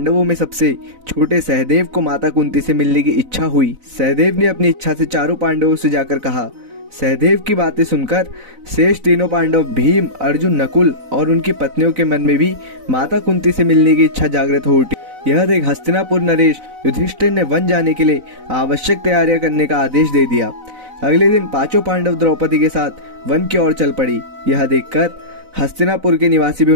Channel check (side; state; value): left; late; 4.0 ms